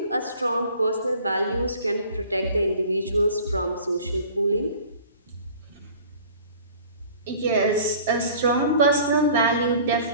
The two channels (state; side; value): inverted; both; correlation -0.47